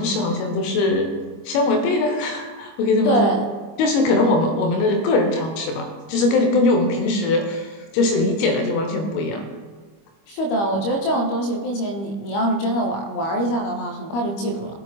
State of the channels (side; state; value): right; late; 25 ms